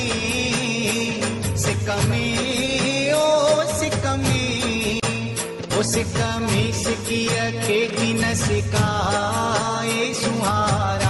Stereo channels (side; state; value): both; identical; correlation 1.00